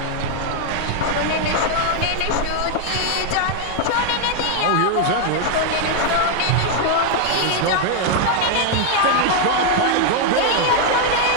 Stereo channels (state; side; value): different; both; correlation 0.00